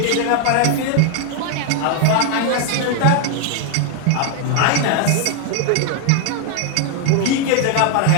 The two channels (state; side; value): different; both; correlation 0.01